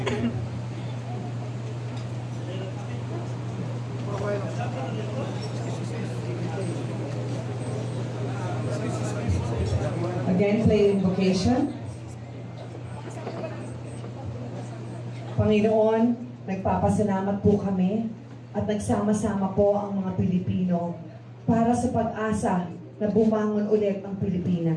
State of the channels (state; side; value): identical; both; correlation 1.00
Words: again play invocation. Panginoon, nagpapasalamat po kami at nagsama-sama po ang mga Pilipino para sa pag-asa na bumangon ulit ang